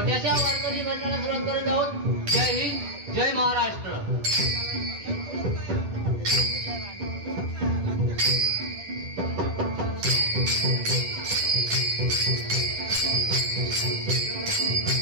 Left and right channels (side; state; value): left; late; 9.6 ms